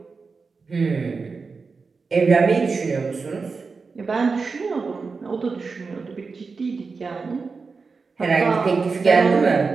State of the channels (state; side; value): quieter; left; 4.6 dB